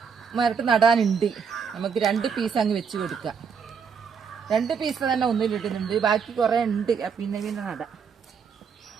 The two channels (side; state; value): left; quieter; 6.4 dB